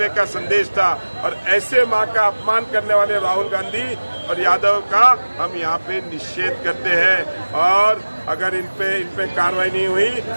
का संदेश था। और ऐसे माँ का अपमान करने वाले राहुल गांधी और यादव का हम यहाँ पे निषेध करते हैं और अगर इन पे कार्रवाई नहीं हुई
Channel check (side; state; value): both; inverted; correlation -1.00